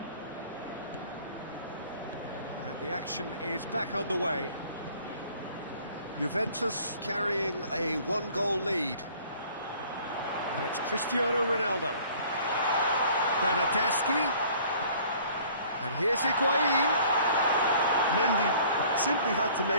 The action is back underway. Juventus carrying a 1-goal lead. Now it's Cristiano Ronaldo. Bernardeschi. And here's Higuain. Mendy simply had to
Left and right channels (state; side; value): inverted; both; correlation -0.53